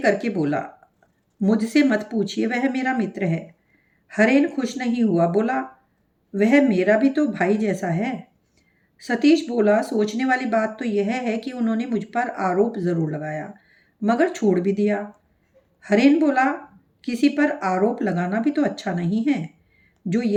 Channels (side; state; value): both; identical; correlation 1.00